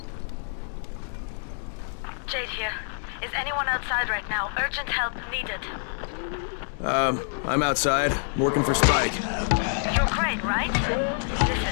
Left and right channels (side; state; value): right; silent; 60 dB below the other